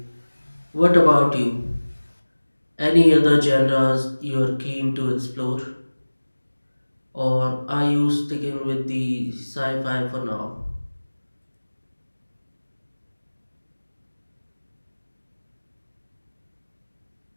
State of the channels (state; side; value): inverted; both; correlation -1.00